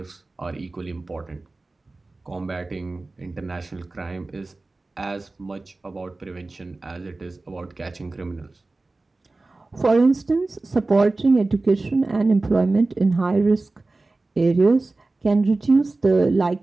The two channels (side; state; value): left; quieter; 3.3 dB